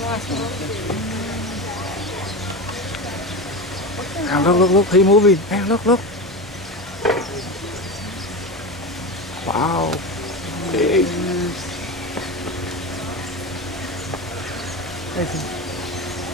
last one. Look, he's moving. Hey, look. Wow. Big.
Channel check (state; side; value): normal; both; correlation 0.23